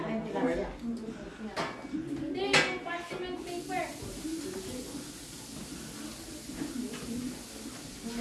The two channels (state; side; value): identical; both; correlation 1.00